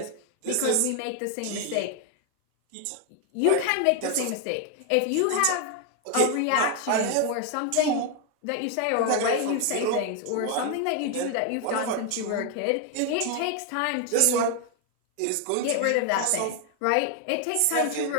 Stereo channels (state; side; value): different; both; correlation 0.01